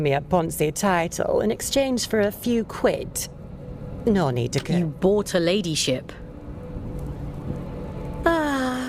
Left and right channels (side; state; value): both; identical; correlation 1.00